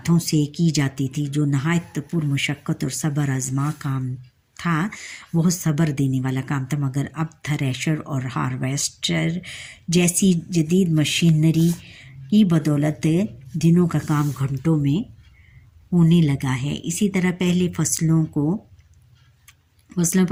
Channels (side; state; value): both; identical; correlation 1.00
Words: سے کی جاتی تھی، جو نہایت پرمشقت اور صبر آزما کام تھا، بہت صبر دینے والا کام تھا، مگر اب تھریشر اور ہارویسٹر جیسی جدید مشینری کی بدولت دنوں کا کام گھنٹوں میں ہونے لگا ہے۔ اسی طرح پہلے فصلوں